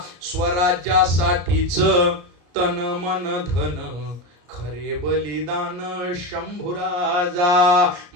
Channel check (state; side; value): late; left; 34 ms